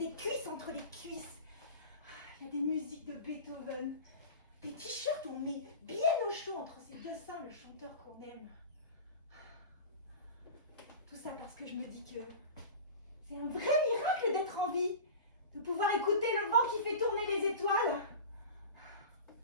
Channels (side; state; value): both; inverted; correlation -0.32